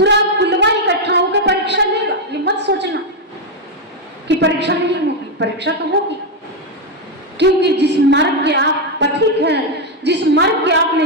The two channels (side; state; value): both; normal; correlation 0.03